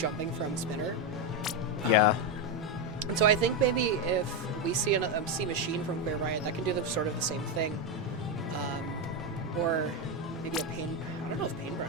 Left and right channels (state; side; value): normal; both; correlation 0.08